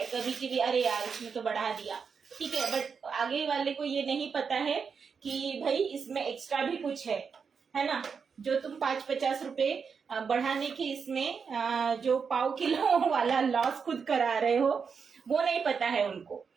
कभी कभी, अरे यार इसमें तो बढ़ा दिया, ठीक है, बट आगे वाले को ये नहीं पता है कि भाई इसमें एक्स्ट्रा भी कुछ है ना। जो तुम 5-50 रुपए बढ़ाने के इसमें जो पाव किलो वाला लॉस खुद करा रहे हो, वो नहीं पता है उनको।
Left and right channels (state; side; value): quieter; left; 5.9 dB